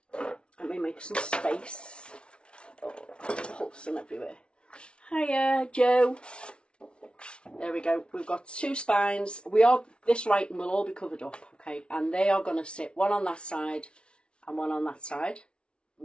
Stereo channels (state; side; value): late; right; 0.058 ms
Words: Let me make some space. Oh, pulsing everywhere. Hiya, Joe. There we go. We've got 2 spines. This writing will all be covered up, okay? And they are going to sit one on that side and one on that side,